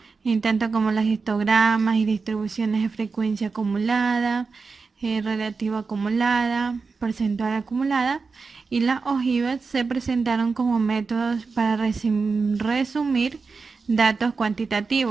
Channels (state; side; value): quieter; left; 4.6 dB